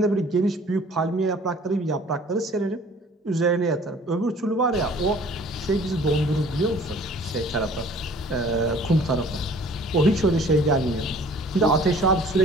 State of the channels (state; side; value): normal; both; correlation 0.52